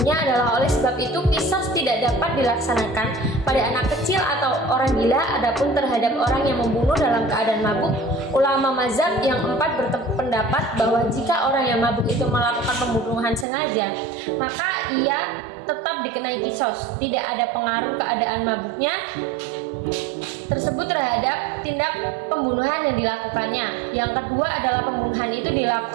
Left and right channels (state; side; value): drops out; left; at 13.5 s